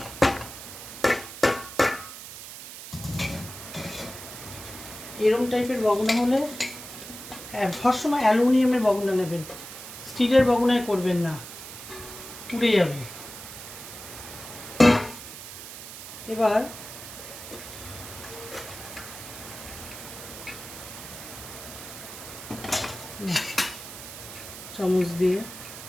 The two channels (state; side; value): noise; right; hiss, 12 dB below the sound